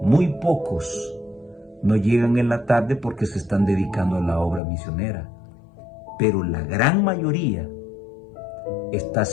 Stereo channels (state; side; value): drops out; right; at 4.6 s